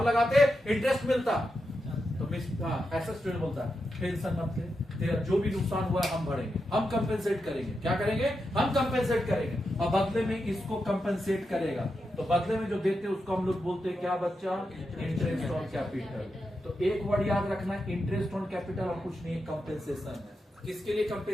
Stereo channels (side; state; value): both; normal; correlation 0.87